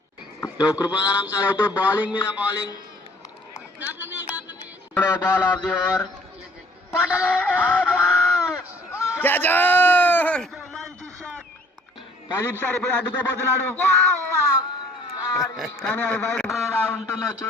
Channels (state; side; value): normal; both; correlation 0.57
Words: కృపాదానం సార్ అయితే బౌలింగ్ మీద bowling. Ball of the over. Pradeep sir ఇప్పుడు అడ్డుకోబోతున్నాడు కానీ అది బయట ఎలా ఉంటుందో